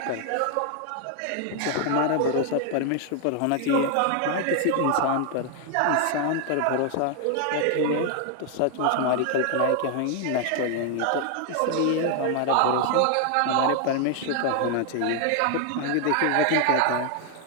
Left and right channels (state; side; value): different; both; correlation 0.00